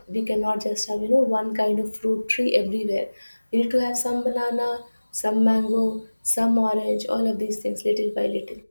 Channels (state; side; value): inverted; both; correlation -1.00